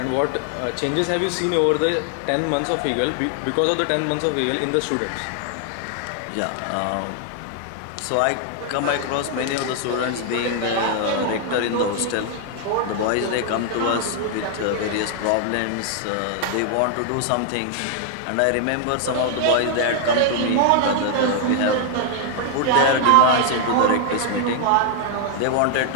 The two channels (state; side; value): different; both; correlation 0.00